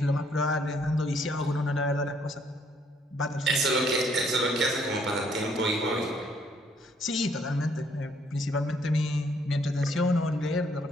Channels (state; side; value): normal; both; correlation 0.67